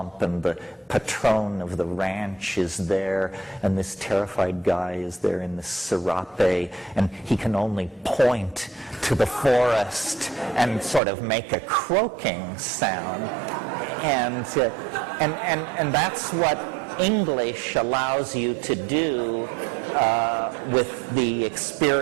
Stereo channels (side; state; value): left; drops out; at 11.0 s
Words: and the patron of the ranch is there, and this terrified guy is there in this serape, and he can only point to the forest and sort of make a croaking sound, and that's what English allows you to do with the